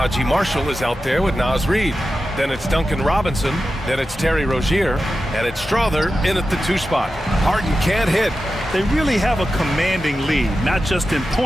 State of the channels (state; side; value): normal; both; correlation 0.92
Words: Marshall is out there with Naz Reid. Then it's Duncan Robinson. Then it's Terry Rozier. And it's Strother in at the 2 spot. Harden can't hit. They really have a commanding lead, not just in